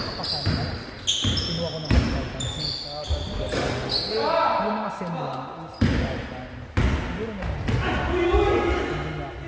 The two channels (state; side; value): identical; both; correlation 1.00